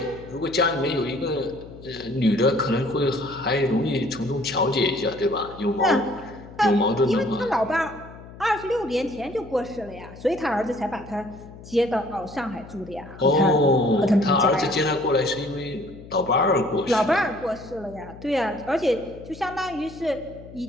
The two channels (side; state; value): left; noise; hum, 17 dB below the sound